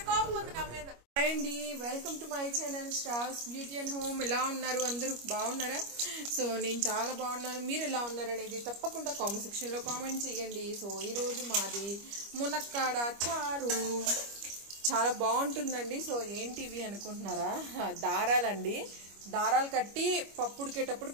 కోపం ఉంది నా మీద. హాయ్ అండి, welcome to my channel stars beauty and home. ఎలా ఉన్నారు అందరూ? బాగున్నారా? సో నేను చాలా బాగున్నాను. మీరు ఎలా ఉన్నారు అనేది తప్పకుండా కామెంట్ సెక్షన్లో కామెంట్ చేయండి. సో ఈరోజు మాది మునక్కాడ చారు. చాలా బాగుంటుందండి. సో ఏంటివి అనుకుంటున్నారా? దారాలండి. దారాలు కట్టి పప్పు ఉడికేటప్పుడు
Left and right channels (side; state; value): left; late; 25 ms